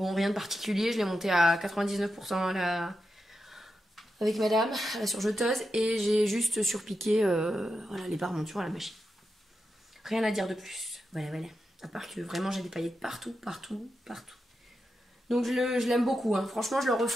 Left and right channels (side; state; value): both; normal; correlation 0.88